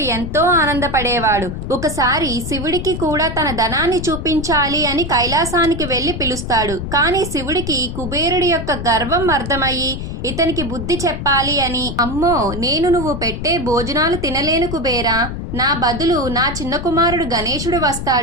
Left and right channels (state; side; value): noise; left; rumble, 6 dB below the sound